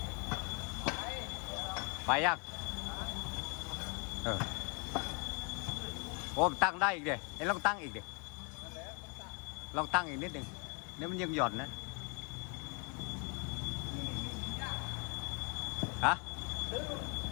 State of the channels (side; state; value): right; quieter; 34.6 dB